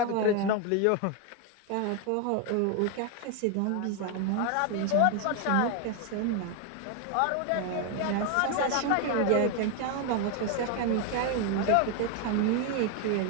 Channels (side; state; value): both; different; correlation 0.01